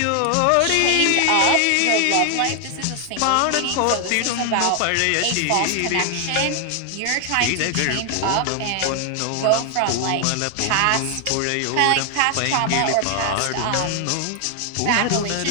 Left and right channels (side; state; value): both; different; correlation 0.00